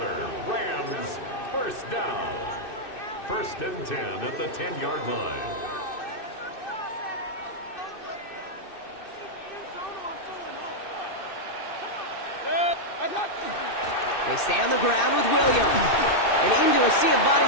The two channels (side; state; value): right; late; 2.6 ms